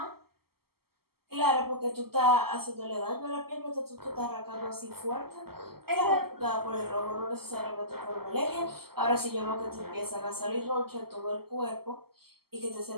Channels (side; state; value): left; late; 0.95 ms